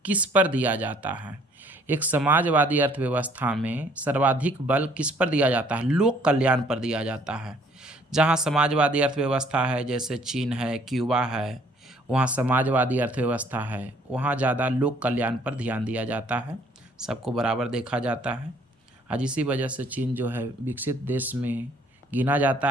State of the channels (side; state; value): both; normal; correlation 0.61